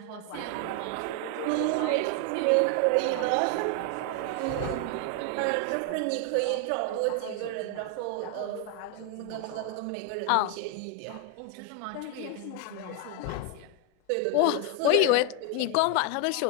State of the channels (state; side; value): different; both; correlation 0.01